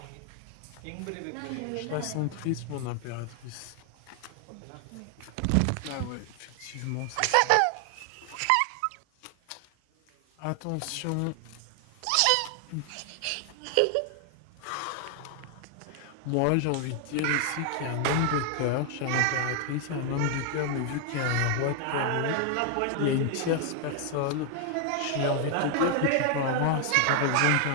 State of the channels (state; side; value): different; both; correlation 0.00